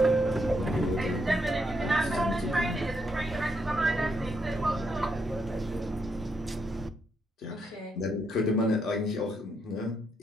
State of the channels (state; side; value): normal; both; correlation 0.78